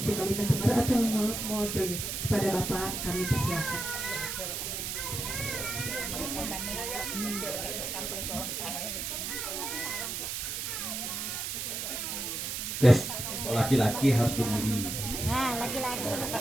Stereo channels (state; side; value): noise; right; hiss, 3 dB below the sound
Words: Kalimantan Barat atau mewakili kepada Bapak, kami persilakan. Guys, laki-laki harus berdiri. Nah, laki-laki.